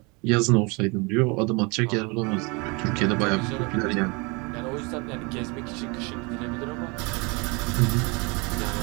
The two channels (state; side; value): quieter; left; 29.0 dB